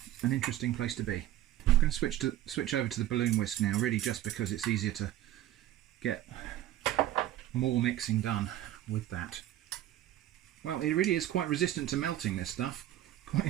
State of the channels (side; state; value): left; quieter; 13.4 dB